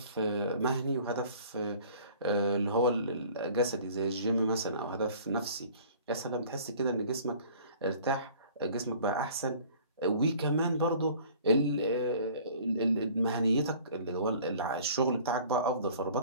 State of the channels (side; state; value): both; inverted; correlation -0.49